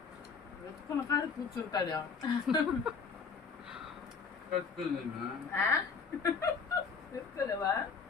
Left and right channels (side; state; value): right; quieter; 5.5 dB